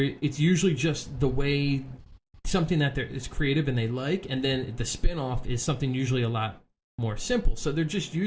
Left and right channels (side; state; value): both; identical; correlation 1.00